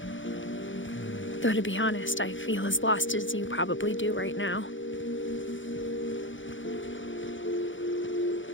Though to be honest, I feel as lost as you probably do right now.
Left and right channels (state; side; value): late; right; 0.56 ms